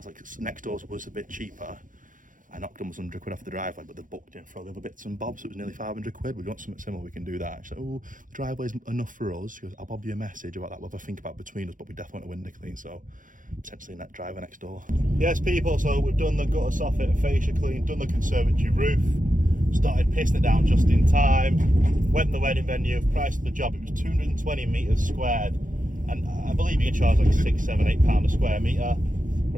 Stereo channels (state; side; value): late; left; 0.38 ms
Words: like, next door's was a bit cheaper. I knocked almost 100 quid off the driveway, but they booked in for all the other bits and bobs, so it was nearly 500 quid. We want something similar, we can do that. She's like, oh, the driveway's enough for us. She goes, I'll bob you a message about that, we'll have a think about between us, but we definitely want a window clean, so potentially net driveway next door. Yes, people, so we've done the gutter soffit and fascia clean, done the conservatory roof, started pissing it down just in time, went to the wedding venue, price of the job, it was 220 metres squared, and I believe you can charge like £6, £7, £8 a square metre.